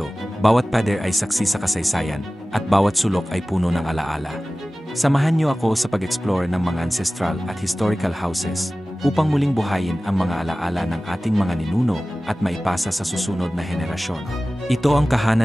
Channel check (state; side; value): normal; both; correlation 0.97